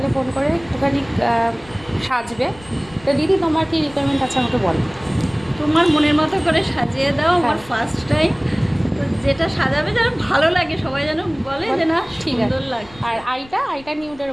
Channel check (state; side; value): noise; left; rumble, 22 dB below the sound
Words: ফোন করে একটুখানি সাজবে। তো দিদি তোমার কি রিকোয়ারমেন্ট আছে আমাকে বলো। তোমার মনের মতো করে সাজিয়ে দাও। হ্যাঁ। আমার ফার্স্ট টাইম, তো যেটা সাজাবে যেন ভালো লাগে, সবাই যেন বলে যে না ঠিক আছে। সুন্দর লাগে। আর আইটা নিউডের